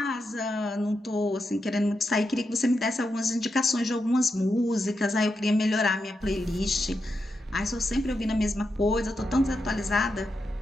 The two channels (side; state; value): both; normal; correlation 0.86